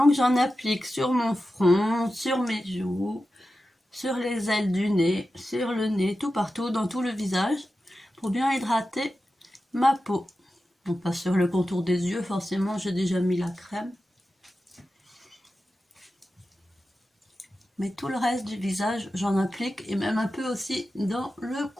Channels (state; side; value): normal; both; correlation 0.92